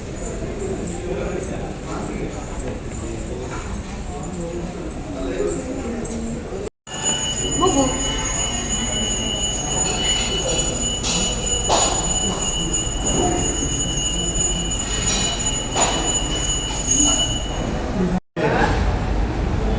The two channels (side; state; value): both; identical; correlation 1.00